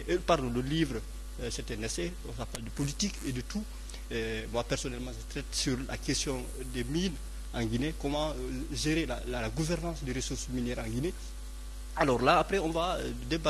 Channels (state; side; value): identical; both; correlation 1.00